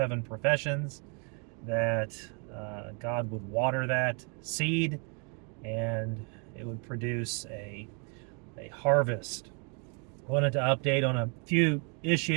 professions that God would water that seed and it would produce a harvest. I wanted to update on a few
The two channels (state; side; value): quieter; left; 36.9 dB